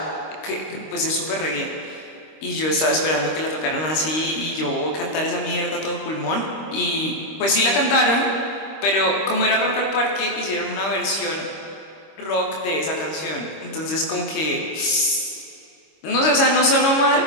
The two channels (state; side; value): late; right; 25 ms